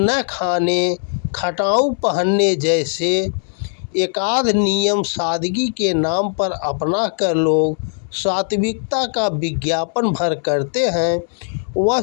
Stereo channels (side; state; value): right; silent; 63 dB below the other